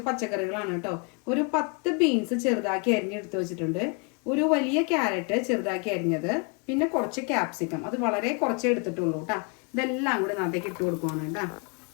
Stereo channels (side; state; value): right; quieter; 33.2 dB